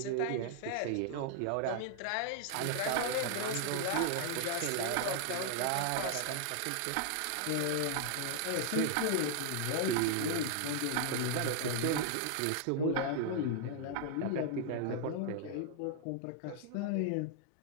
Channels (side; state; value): both; different; correlation 0.00